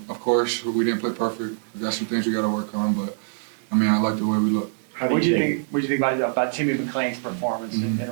Of course, we didn't play perfect. We got some things we got to work on, but I mean, I like the way we look. What do you think about Timmy McClain's performance in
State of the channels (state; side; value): silent; left; digital silence